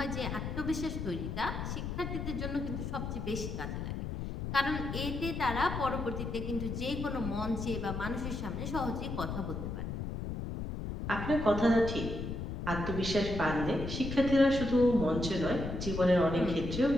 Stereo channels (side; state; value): left; noise; rumble, 5 dB below the sound